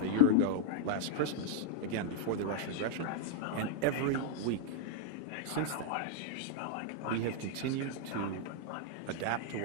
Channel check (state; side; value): different; both; correlation 0.00